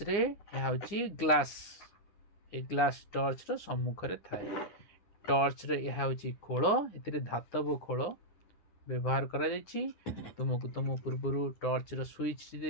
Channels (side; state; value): right; late; 9.8 ms